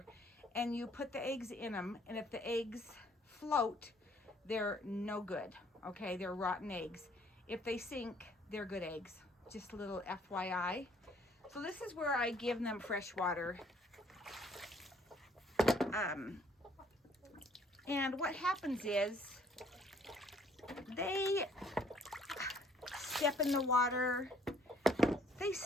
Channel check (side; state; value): both; normal; correlation 0.62